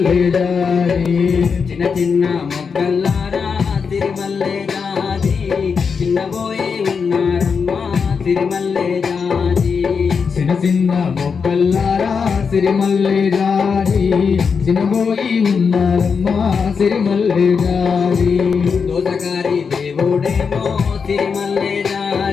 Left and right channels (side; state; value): right; quieter; 5.8 dB